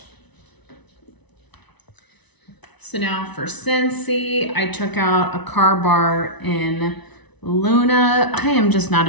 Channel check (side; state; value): right; late; 1.0 ms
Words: So now for Scentsy, I took out a car bar in Luna. I am just not